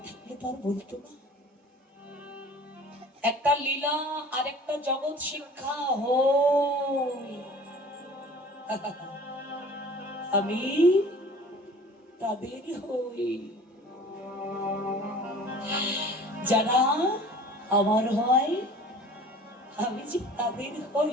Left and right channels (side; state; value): both; normal; correlation 0.45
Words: থাকলে তো আর বলতো না। একটা লীলা আর একটা জগৎ শিক্ষা হই। আমি তাদের হই যারা আমার হয়, আমি যে তাদের হই।